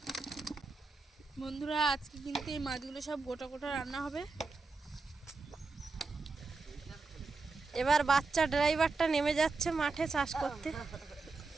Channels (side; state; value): left; quieter; 4.0 dB